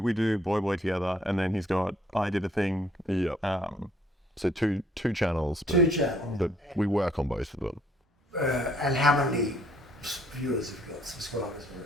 do Boy together, and then I did a thing. So two channels. Two channels. But we work on both of them. And how many viewers have you got, subscribers?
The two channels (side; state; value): both; normal; correlation 0.64